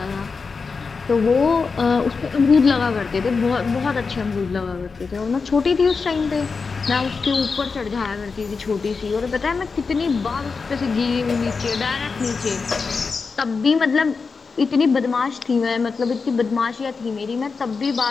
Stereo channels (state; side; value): quieter; right; 4.8 dB